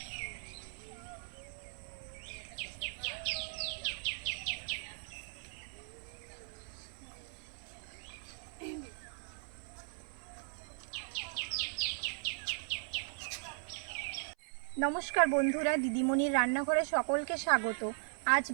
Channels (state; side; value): silent; left; 52 dB below the other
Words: নমস্কার বন্ধুরা, দিদিমণির রান্নাঘরে সকলকে স্বাগত। আজ